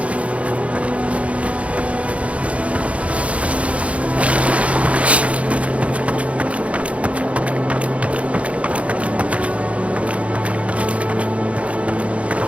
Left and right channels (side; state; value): left; late; 0.063 ms